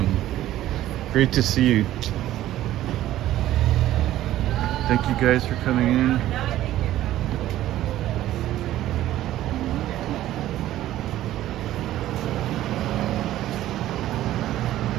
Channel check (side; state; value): left; quieter; 13.9 dB